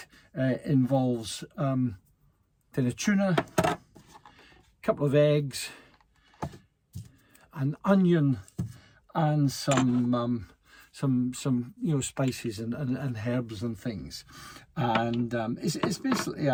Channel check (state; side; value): identical; both; correlation 1.00